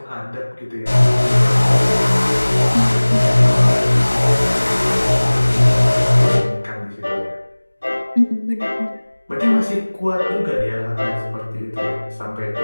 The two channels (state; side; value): inverted; both; correlation -1.00